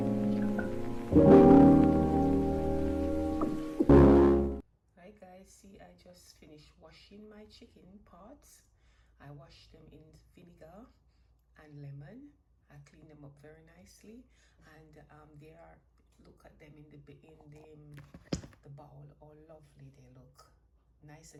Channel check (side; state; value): both; identical; correlation 1.00